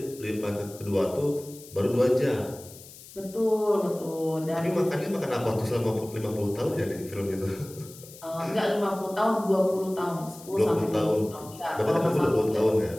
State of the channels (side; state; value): left; noise; hiss, 18 dB below the sound